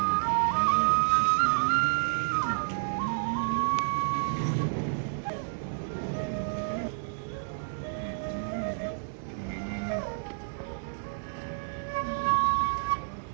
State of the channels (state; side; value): silent; left; digital silence